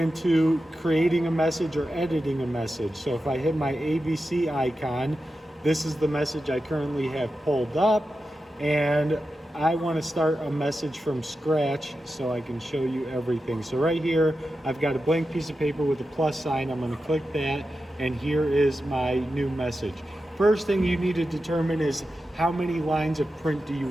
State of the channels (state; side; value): normal; both; correlation 0.91